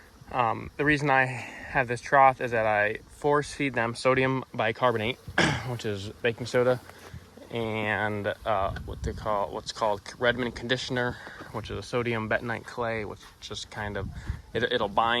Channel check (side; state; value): both; identical; correlation 1.00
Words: reason I have this trough is that I force feed them sodium bicarbonate, which is baking soda, and what's called Redmond conditioner, which is a sodium bentonite clay, which just kind of it'll